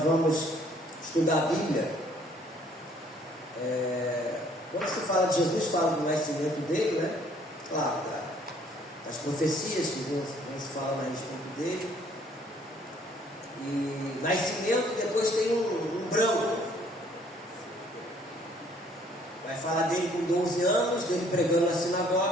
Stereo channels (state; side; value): normal; both; correlation 0.61